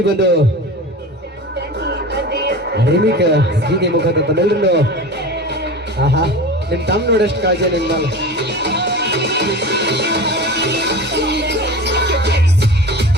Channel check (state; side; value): normal; both; correlation 0.32